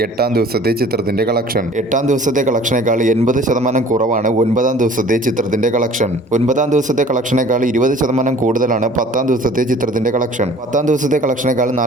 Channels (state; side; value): normal; both; correlation 0.49